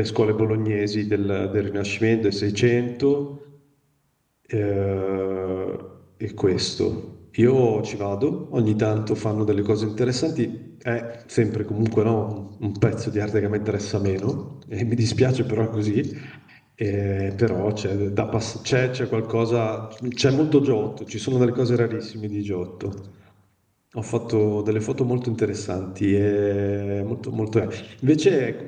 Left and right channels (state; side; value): identical; both; correlation 1.00